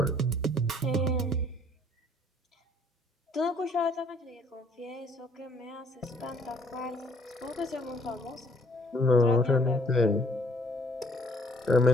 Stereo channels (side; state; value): both; normal; correlation 0.61